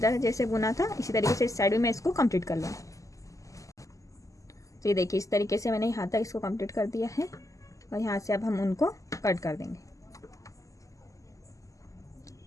जैसे बुना था, इसी तरीके से इस साइड में मैं इसको कंप्लीट कर लूँ। तो ये देखिए इस तरीके से मैंने यहाँ तक इसको कंप्लीट कर दिया है, और यहाँ से अब हम उनको कट कर देंगे।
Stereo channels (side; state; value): right; late; 0.16 ms